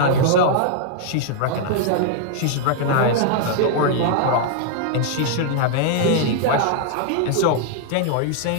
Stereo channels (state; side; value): different; both; correlation 0.00